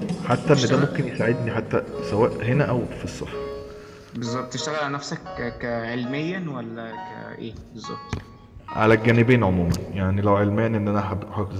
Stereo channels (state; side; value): identical; both; correlation 1.00